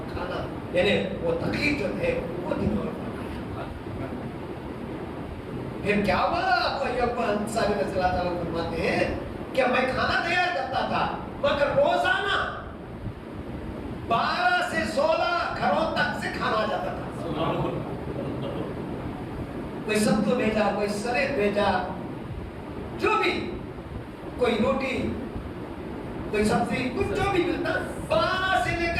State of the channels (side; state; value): both; identical; correlation 1.00